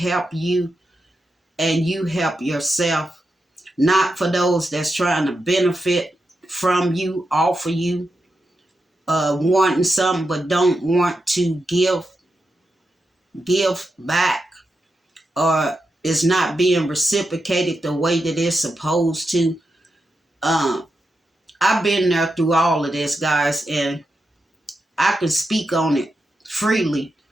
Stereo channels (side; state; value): both; normal; correlation 0.87